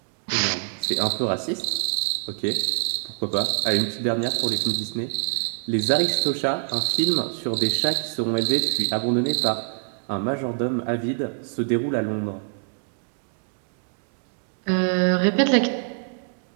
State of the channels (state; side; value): silent; left; digital silence